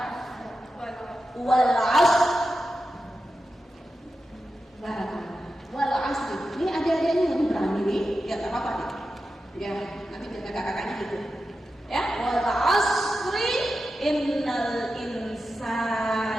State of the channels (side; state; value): both; normal; correlation 0.91